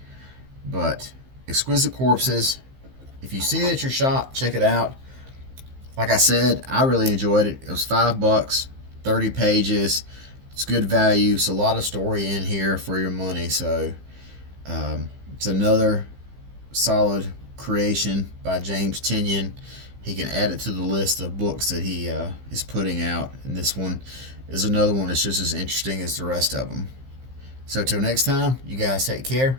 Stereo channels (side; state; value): left; late; 15 ms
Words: But Exquisite Corpses, if you see it at your shop, check it out. Like I said, I really enjoyed it. It was $5, 30 pages. It's good value. It's a lot of story in here for your money. So it's another solid creation by James Tynion. He can add it to the list of books that he is putting out. And this one is another one that's just as interesting as the rest of them. So till next time, you guys take care.